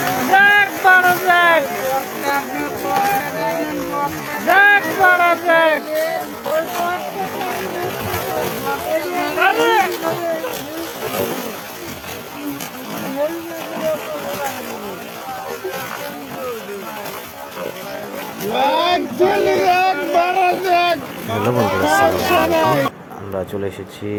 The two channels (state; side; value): identical; both; correlation 1.00